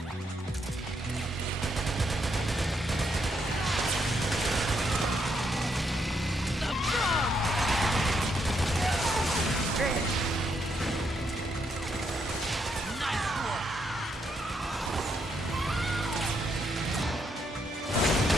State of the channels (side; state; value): both; normal; correlation 0.77